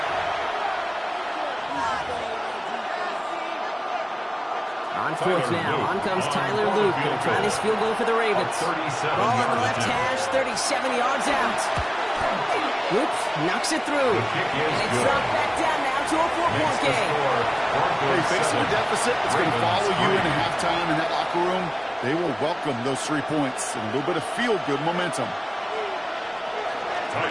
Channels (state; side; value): identical; both; correlation 1.00